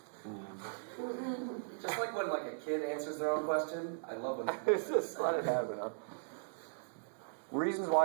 Just like when like a kid answers their own question. I love when It's just let it happen, huh? Reasons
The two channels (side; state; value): left; silent; digital silence